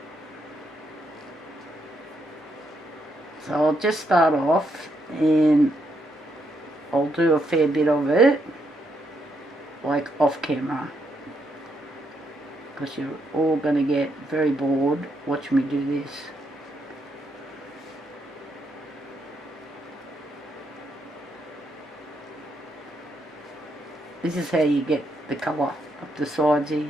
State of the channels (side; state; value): both; normal; correlation 0.78